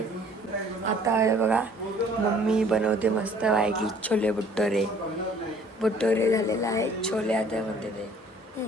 आता बघा मम्मी बनवते मस्त वाईकी छोले भटुरे झालेला आहे. छोले आता म्हणते ते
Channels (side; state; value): both; normal; correlation 0.55